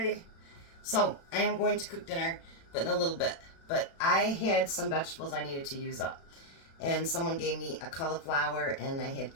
So I am going to cook dinner, but in a little bit. But I had some vegetables I needed to use up. And someone gave me a cauliflower, and I had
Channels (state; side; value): late; right; 36 ms